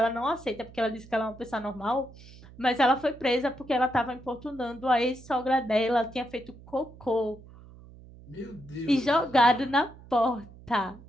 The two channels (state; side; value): noise; right; hum, 20 dB below the sound